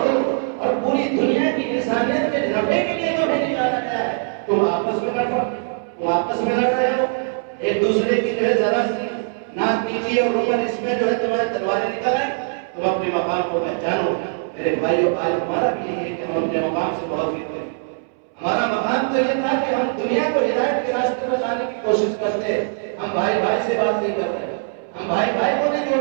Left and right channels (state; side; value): silent; left; 65 dB below the other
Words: اور پوری دنیا کی انسانیت کے نفع کے لیے تمہیں نکالا گیا ہے. تم آپس میں لڑ رہے ہو، ایک دوسرے کی جو ہے ذرا سی ناک نیچی اور عمر اس میں جو ہے تمہارے تلواریں نکل آئیں. تم اپنے مقام کو پہچانو. میرے بھائیو، آج ہمارا بھی یہ ہے کہ ہم اپنے مقام سے بہت فکر کریں. ہمارا مقام تو یہ تھا کہ ہم دنیا کو ہدایت کے راستے میں لانے کی کوشش کرتے. ہم بھائی بھائی سے بات نہیں کر رہے، ہم بھائی بھائی کو نہیں